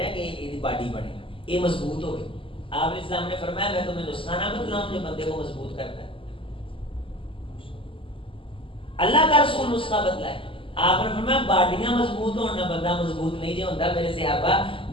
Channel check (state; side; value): late; right; 0.25 ms